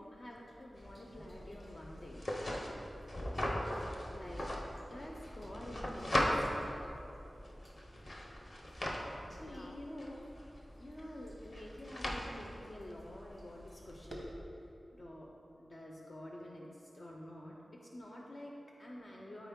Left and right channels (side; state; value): both; normal; correlation 0.95